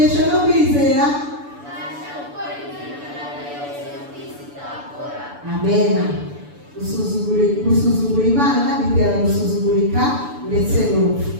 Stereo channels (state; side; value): late; left; 6.9 ms